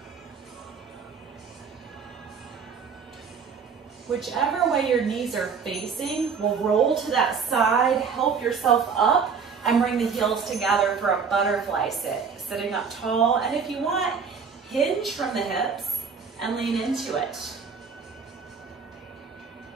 Whichever way your knees are facing, we'll roll to that side, help yourself up, and bring the heels together for a butterfly sit. Sitting up tall, and if you want, hinge from the hips and lean into it.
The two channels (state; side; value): quieter; left; 5.9 dB